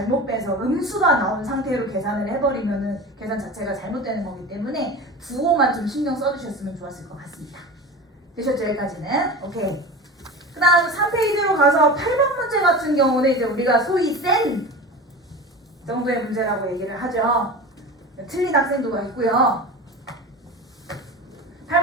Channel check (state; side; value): normal; both; correlation 0.31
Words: 빼서 음수가 나온 상태로 계산을 해버리면은 계산 자체가 잘못되는 거기 때문에 부호만 좀 신경 써주셨으면 좋았을 것 같습니다. 되셨죠? 여기까지는? 오케이. 그 다음 3페이지로 가서 8번 문제 같은 경우는 이제 우리가 소위 센 정도의 문제라고 얘기를 하죠. 틀린 학생도가 있고요.